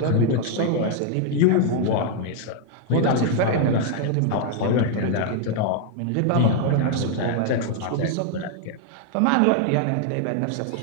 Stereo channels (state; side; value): different; both; correlation 0.00